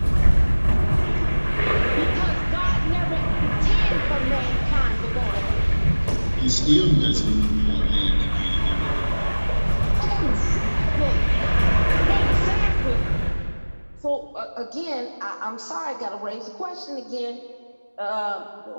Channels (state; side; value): inverted; both; correlation -1.00